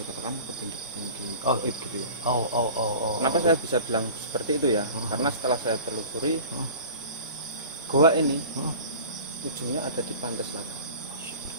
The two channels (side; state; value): both; inverted; correlation -0.40